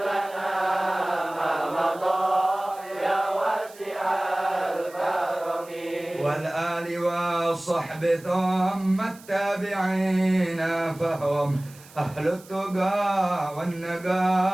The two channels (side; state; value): right; noise; hiss, 22 dB below the sound